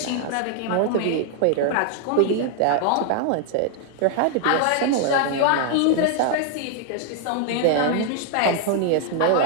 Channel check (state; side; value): different; both; correlation 0.00